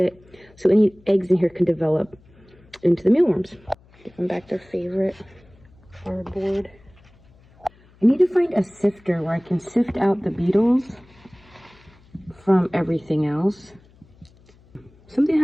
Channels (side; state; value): left; noise; hum, 28 dB below the sound